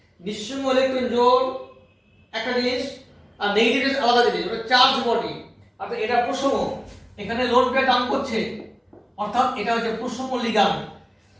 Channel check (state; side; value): identical; both; correlation 1.00